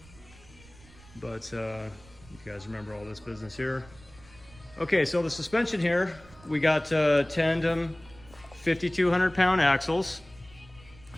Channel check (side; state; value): right; noise; rumble, 23 dB below the sound